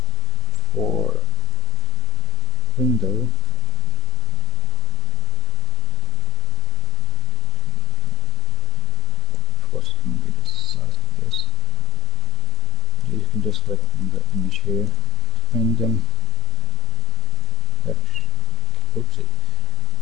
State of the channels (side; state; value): left; quieter; 4.6 dB